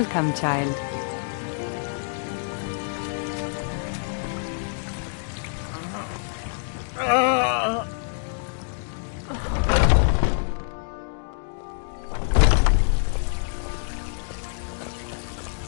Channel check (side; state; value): right; silent; digital silence